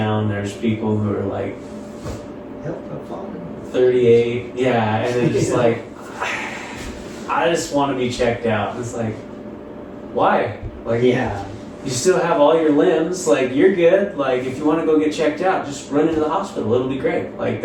there's people who are like 38. Yeah. And they're just like, I just want to be checked out. And it's like, why? Like, you still have all your limbs. Like, you're good. Like, if you want to go get checked out, just run into the hospital. It'll be great. Like,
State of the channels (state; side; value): identical; both; correlation 1.00